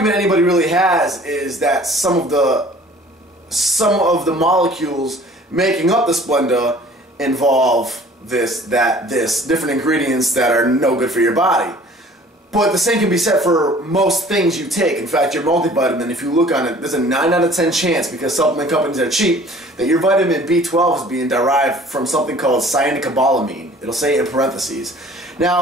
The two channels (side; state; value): both; normal; correlation 0.50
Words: anybody really has is that some of the molecules making up the Splenda involve this, different ingredients that are no good for your body. But the same can be said for most things you take. In fact, your multivitamin, if you look on it, there's a 9 out of 10 chance, because supplement companies are cheap, that your vitamin B12 is being derived from something called cyanocobalamin. It'll say in parentheses.